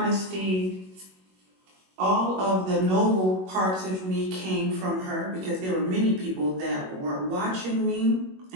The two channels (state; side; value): late; left; 21 ms